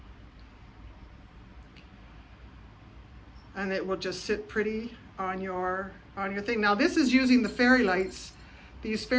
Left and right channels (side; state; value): both; identical; correlation 1.00